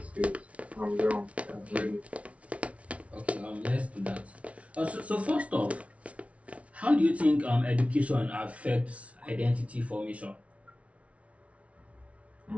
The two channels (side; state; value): left; late; 0.064 ms